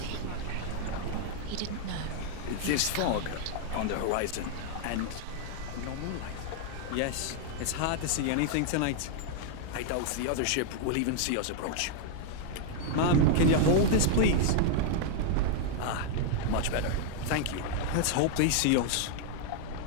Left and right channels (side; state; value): both; different; correlation 0.00